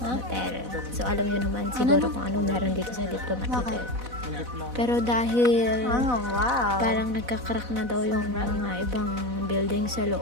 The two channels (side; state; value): left; late; 4.0 ms